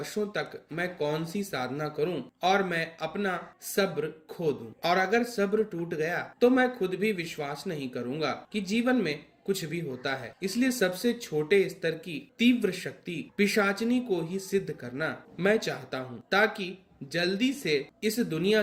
तक मैं कौन सी साधना करूं और मैं अपना सब्र खो दूं, और अगर सब्र टूट गया तो मैं खुद भी विश्वास नहीं करूंगा कि जीवन में कुछ भी होता है। इसलिए सबसे छोटे स्तर की तीव्र शक्ति पिशाचनी को ही सिद्ध करना मैं चाहता हूँ, ताकि जल्दी से इस दुनिया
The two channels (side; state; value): both; identical; correlation 1.00